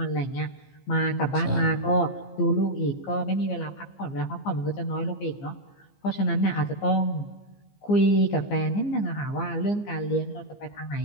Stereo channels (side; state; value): right; late; 15 ms